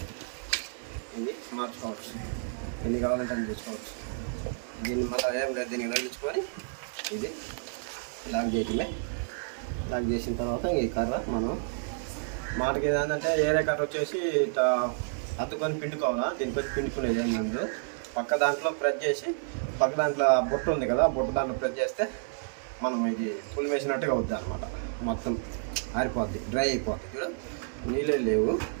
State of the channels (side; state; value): left; silent; 58 dB below the other